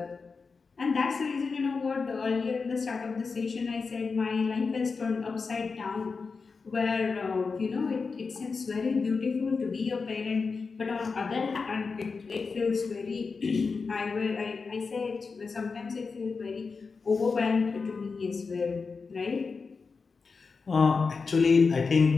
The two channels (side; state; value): right; quieter; 4.7 dB